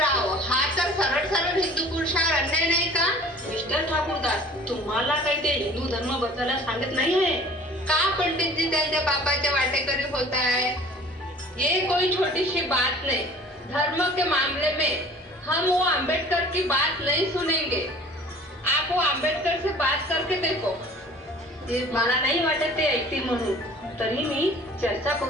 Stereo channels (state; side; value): normal; both; correlation 0.47